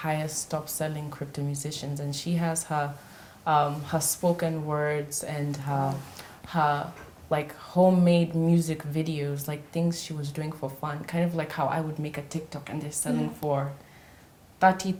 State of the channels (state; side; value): identical; both; correlation 1.00